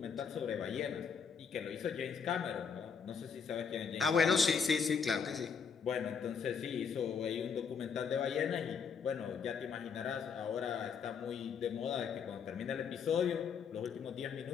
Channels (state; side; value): quieter; right; 6.3 dB